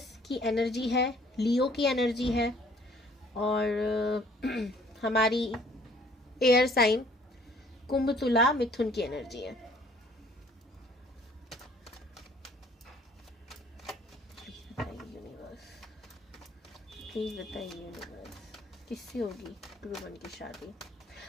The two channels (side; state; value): both; normal; correlation 0.58